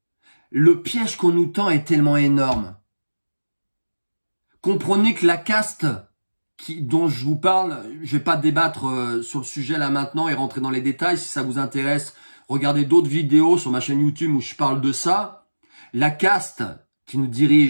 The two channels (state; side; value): inverted; both; correlation -1.00